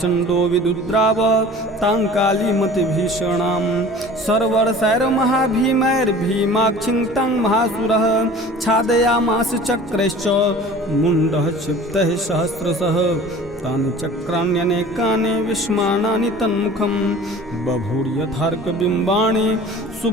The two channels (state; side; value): normal; both; correlation 0.43